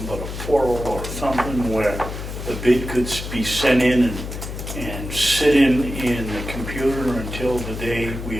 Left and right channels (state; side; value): noise; left; hum, 8 dB below the sound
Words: but a portal or something where the bid could be sent in and sit in the computer until the day we